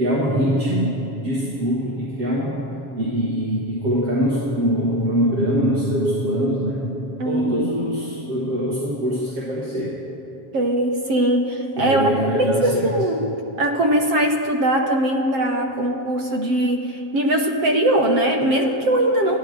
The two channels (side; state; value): left; late; 7.5 ms